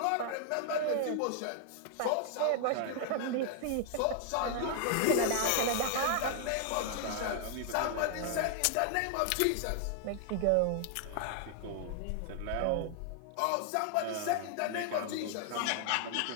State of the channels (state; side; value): different; both; correlation 0.00